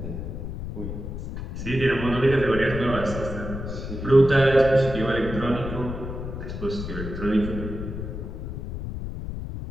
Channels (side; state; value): left; noise; rumble, 7 dB below the sound